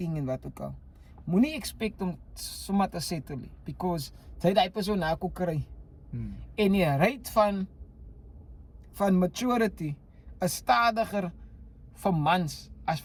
en wat ook al. Moenie expect om sommer te settle nie because jy daai persoon na kon kry. En die rate van maturity is stadiger vir mans as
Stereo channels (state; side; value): identical; both; correlation 1.00